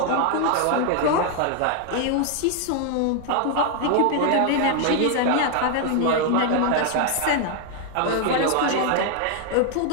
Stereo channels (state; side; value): different; both; correlation 0.00